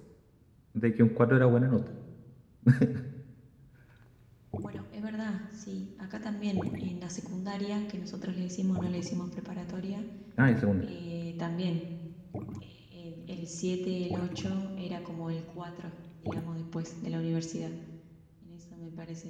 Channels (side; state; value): both; identical; correlation 1.00